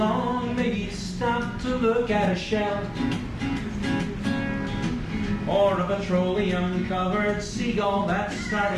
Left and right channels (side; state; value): both; identical; correlation 1.00